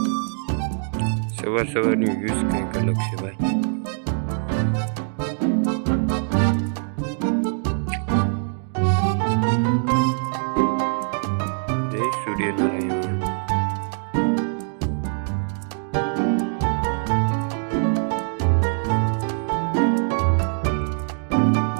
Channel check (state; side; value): silent; left; 63 dB below the other